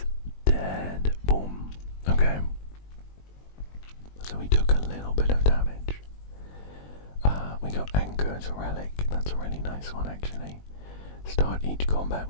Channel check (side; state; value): right; late; 21 ms